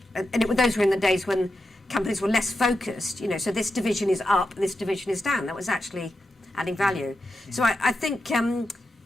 those were in the days when companies were less focused, so this division is up, this division is down. That was actually adding value. So I think, and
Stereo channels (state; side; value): normal; both; correlation 0.88